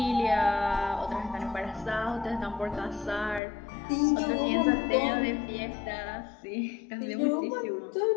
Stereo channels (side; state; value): right; drops out; at 3.4 s